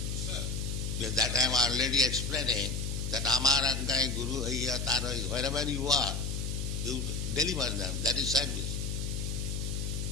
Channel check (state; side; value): noise; left; hum, 2 dB below the sound